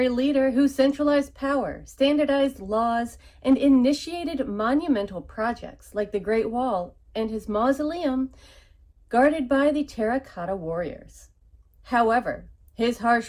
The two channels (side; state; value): both; identical; correlation 1.00